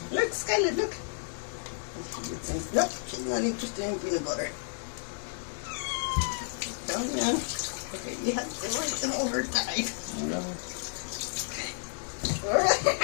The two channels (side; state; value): right; silent; digital silence